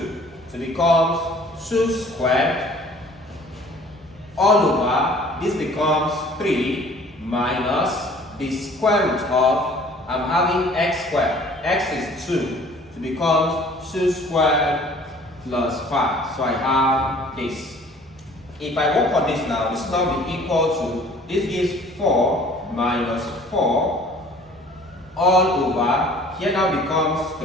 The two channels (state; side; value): normal; both; correlation 0.52